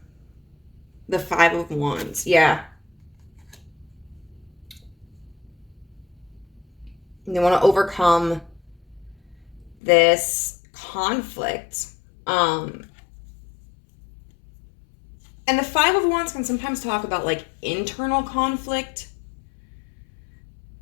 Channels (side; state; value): right; drops out; at 9.8 s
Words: The 5 of Wands. Yeah. They want to overcome this conflict. And the 5 of Wands can sometimes talk about like internal conflict,